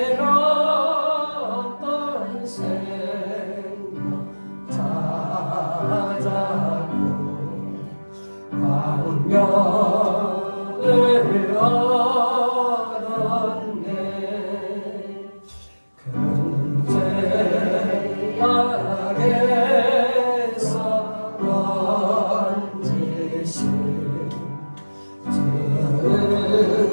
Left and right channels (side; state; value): both; inverted; correlation -1.00